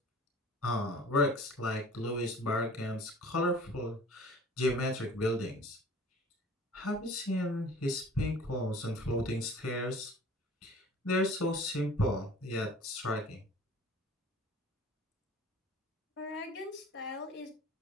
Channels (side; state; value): both; normal; correlation 0.46